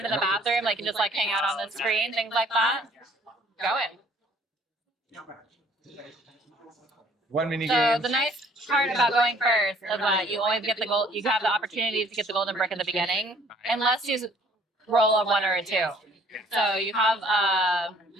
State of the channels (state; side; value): normal; both; correlation 0.59